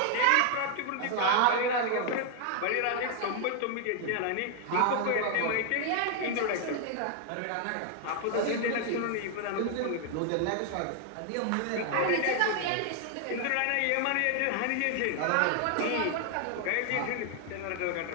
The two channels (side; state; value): both; different; correlation 0.00